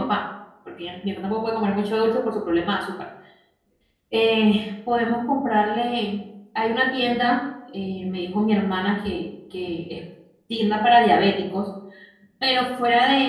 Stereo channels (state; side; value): identical; both; correlation 1.00